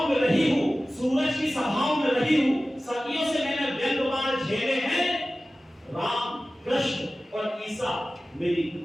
में रही हूं, सूरज की सभाओं में रही हूं, सदियों से मैंने व्यंग्यवार झेले हैं, राम कृष्ण और ईसा मेरी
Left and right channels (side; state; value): both; normal; correlation 0.96